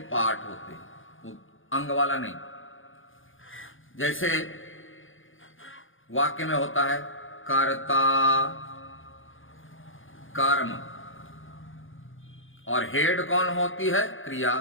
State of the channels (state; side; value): late; right; 0.58 ms